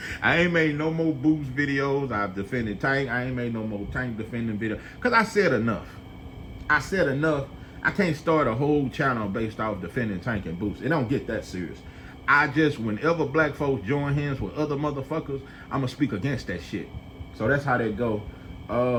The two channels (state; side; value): identical; both; correlation 1.00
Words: ain't made no more boost videos. I've defended Tank. I ain't made no more Tank defending videos. Because I said enough. I can't start a whole channel based off defending Tank and boost. It don't get that serious. Whenever black folks join hands with other motherfuckers, I'm going to speak against that shit. So that's how that go.